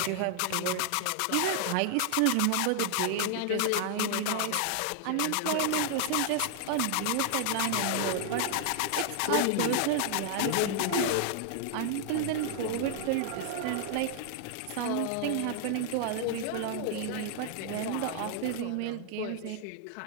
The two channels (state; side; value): different; both; correlation 0.00